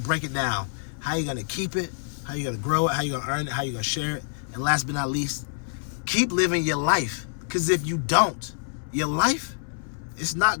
break it down. how you gonna keep it, how you gonna grow it, how you gonna earn it, how you gonna share it. And last but not least, keep living your life. Because if you don't, your life, it's not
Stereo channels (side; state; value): right; silent; 61 dB below the other